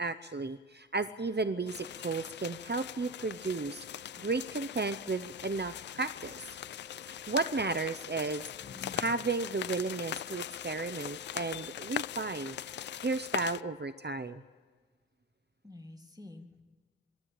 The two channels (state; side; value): normal; both; correlation 0.16